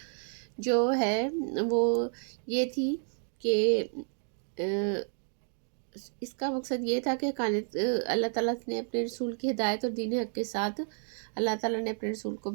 جو ہے وہ یہ تھی کہ اس کا مقصد یہ تھا کہ اللہ تعالیٰ نے اپنے رسول کی ہدایت اور دین حق کے ساتھ اللہ تعالیٰ نے اپنے رسول کو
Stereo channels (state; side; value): silent; left; 57 dB below the other